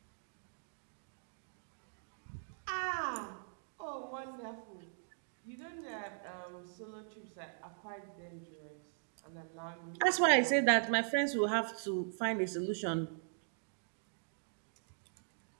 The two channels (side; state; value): left; silent; digital silence